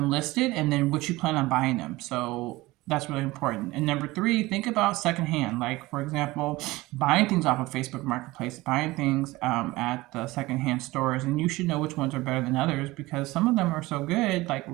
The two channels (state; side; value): quieter; left; 19.9 dB